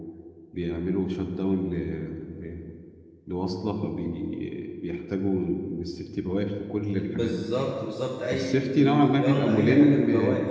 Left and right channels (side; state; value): both; identical; correlation 1.00